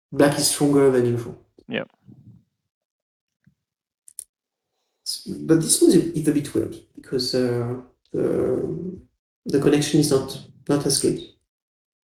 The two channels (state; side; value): identical; both; correlation 1.00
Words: black is stronger than usual. Yeah, But this one is a bit weird because the the connection is not as good.